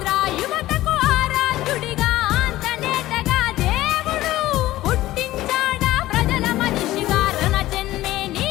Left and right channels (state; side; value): quieter; right; 15.9 dB